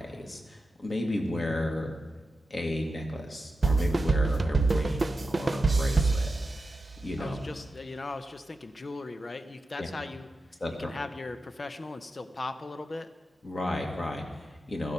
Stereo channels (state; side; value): normal; both; correlation 0.91